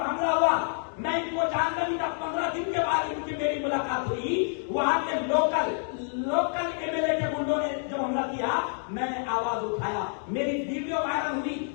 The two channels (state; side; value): silent; right; 59 dB below the other